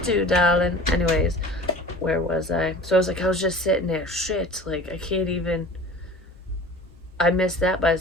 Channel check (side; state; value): both; normal; correlation 0.41